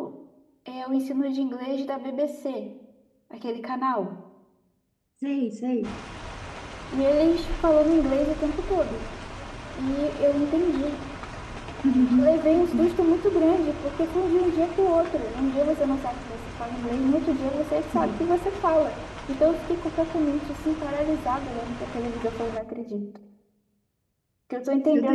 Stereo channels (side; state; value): both; identical; correlation 1.00